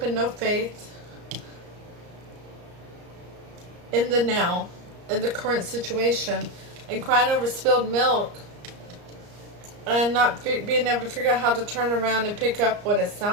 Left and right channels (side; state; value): left; late; 34 ms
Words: and no faith in the now, in the current situation, and crying over spilled milk and not being able to figure out how to turn around and pick up what is